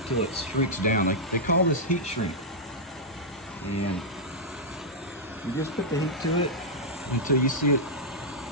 it shrinks down. They call this heat shrink. And you just put the heat to it until you see it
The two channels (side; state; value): both; normal; correlation -0.07